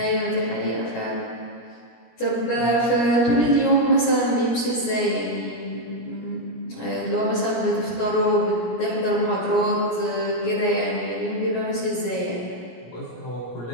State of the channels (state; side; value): late; right; 17 ms